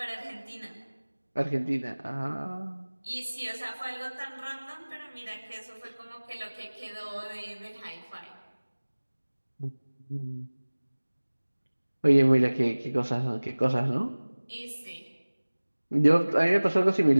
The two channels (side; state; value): both; inverted; correlation -1.00